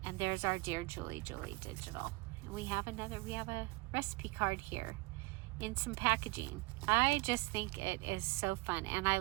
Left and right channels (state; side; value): quieter; left; 24.4 dB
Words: and there's our Dear Julie digital. And we have a recipe card here in some packaging. I just think it is so fun, and I